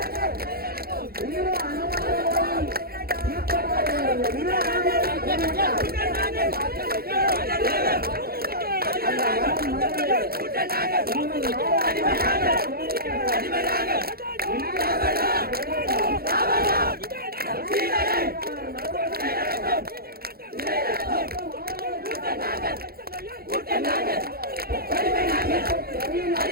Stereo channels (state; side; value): late; left; 0.44 ms